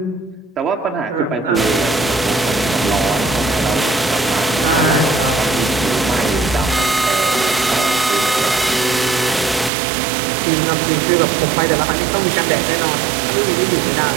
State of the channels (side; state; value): left; drops out; at 9.7 s